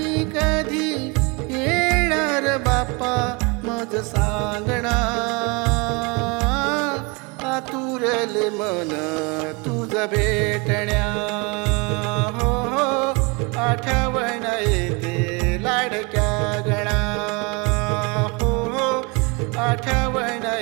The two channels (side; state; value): left; quieter; 29.1 dB